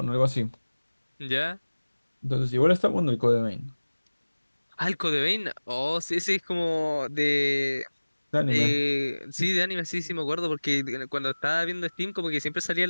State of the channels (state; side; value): inverted; both; correlation -1.00